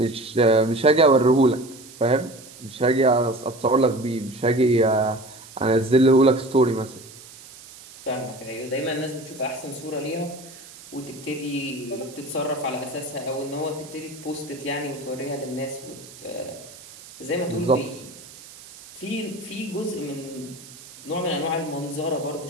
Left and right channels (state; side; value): noise; right; hiss, 19 dB below the sound